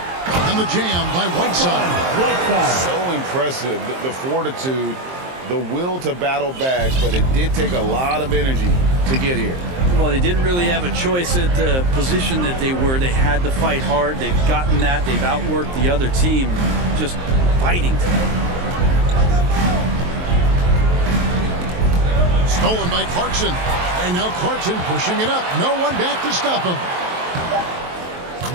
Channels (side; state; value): left; late; 23 ms